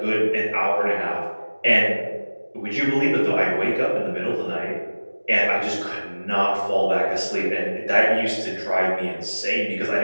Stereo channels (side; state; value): both; inverted; correlation -1.00